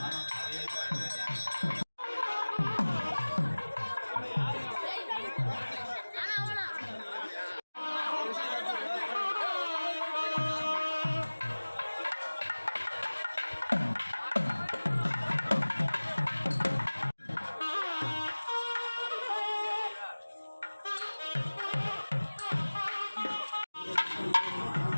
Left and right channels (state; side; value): inverted; both; correlation -1.00